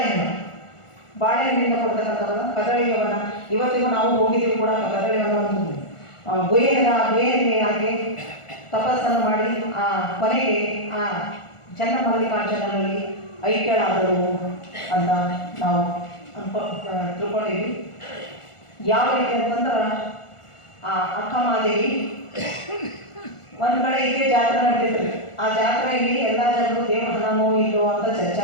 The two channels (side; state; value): right; late; 1.4 ms